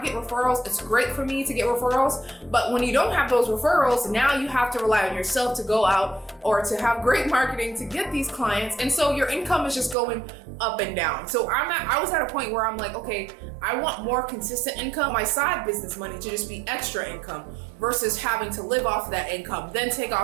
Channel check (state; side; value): drops out; left; at 10.0 s